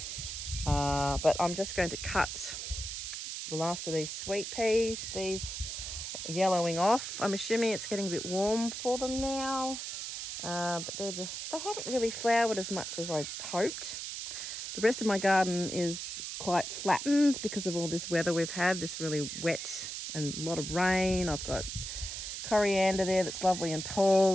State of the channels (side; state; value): right; noise; hiss, 6 dB below the sound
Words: but I'm just going to cut the last of these sweet peas. These are yellowing off. I'm assuming it's getting a bit warm for them now. But they haven't really flowered as much as I hoped. The rest of my garden is quite flattened because of all this weather we've had, this really wet and a lot of rain. I've got coriander there that's lovely and